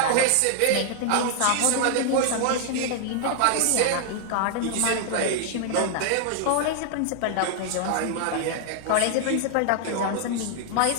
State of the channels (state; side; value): different; both; correlation 0.00